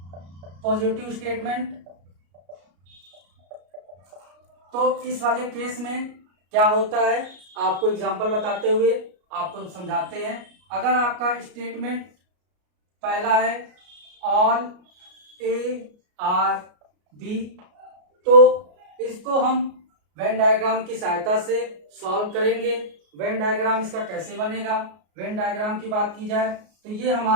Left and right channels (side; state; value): left; late; 33 ms